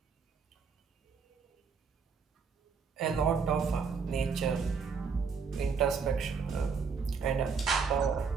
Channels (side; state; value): left; quieter; 5.6 dB